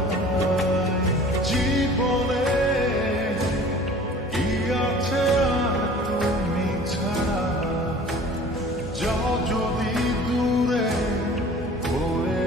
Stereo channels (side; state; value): both; normal; correlation 0.46